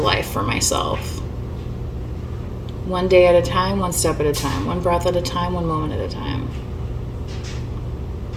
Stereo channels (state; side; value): identical; both; correlation 1.00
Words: for myself. One day at a time, one step at a time, one breath at a time, one moment at a time.